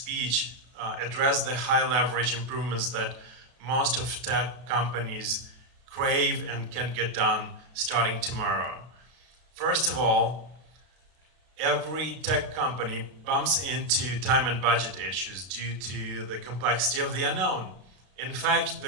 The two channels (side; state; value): left; late; 32 ms